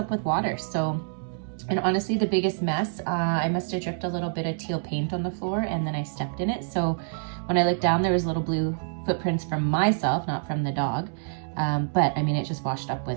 with water. So, and honestly, the biggest mess, I must have dripped a little bit of teal paint on the floor, and then I stepped in it. So when I looked down, there was little blue footprints from myself, not from the dog. But I mean, it just washed up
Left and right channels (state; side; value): silent; left; digital silence